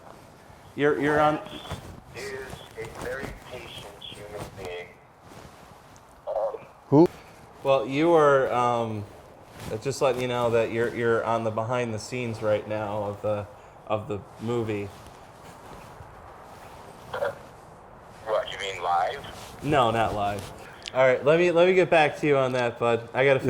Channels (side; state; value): both; identical; correlation 1.00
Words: you're on. is a very patient human being. Who? Well, you are, just letting you know that you're on the behind the scenes right now of the movie. What, you mean live? No, not live. All right, let me get back to you on that, bud. I got to